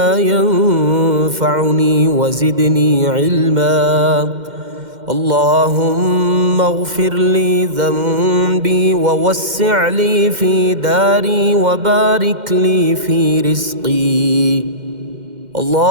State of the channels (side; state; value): left; late; 2.1 ms